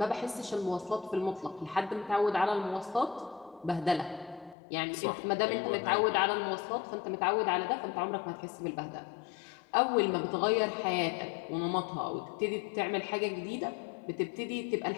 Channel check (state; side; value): drops out; right; at 4.5 s